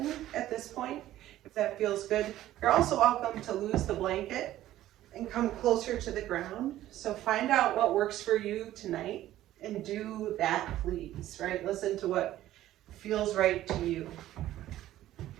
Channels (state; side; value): quieter; left; 13.9 dB